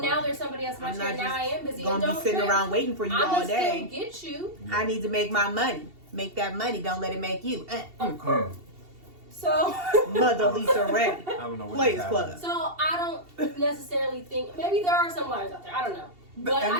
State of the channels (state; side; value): late; left; 2.7 ms